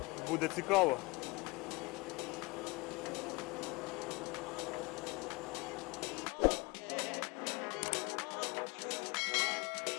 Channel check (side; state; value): right; quieter; 25.6 dB